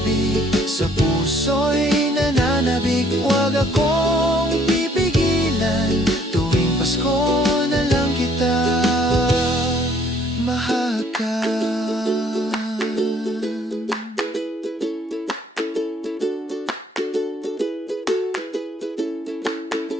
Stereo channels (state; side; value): normal; both; correlation 0.62